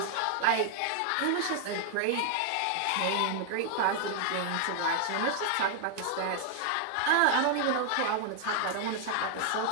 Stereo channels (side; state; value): both; different; correlation 0.00